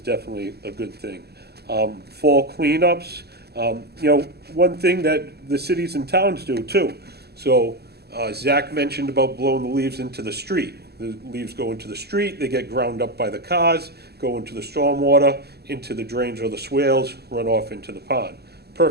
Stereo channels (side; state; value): left; late; 0.47 ms